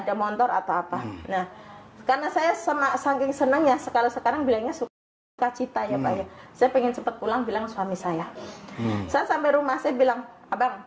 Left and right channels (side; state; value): both; identical; correlation 1.00